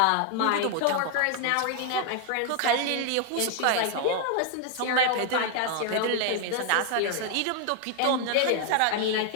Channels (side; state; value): both; different; correlation 0.00